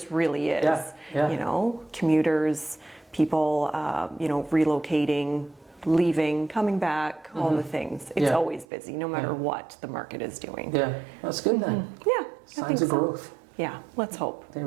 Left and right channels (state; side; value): drops out; left; at 8.7 s